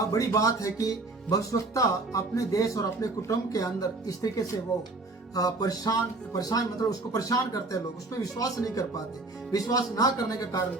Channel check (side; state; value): left; quieter; 3.2 dB